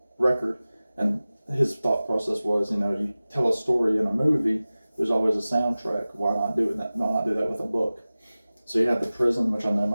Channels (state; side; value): inverted; both; correlation -0.97